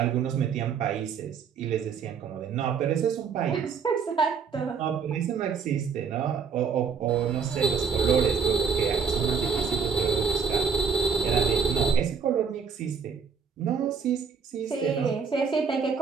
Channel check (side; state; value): left; quieter; 6.3 dB